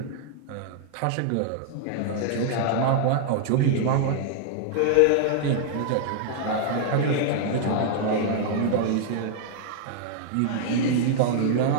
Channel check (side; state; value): both; different; correlation -0.01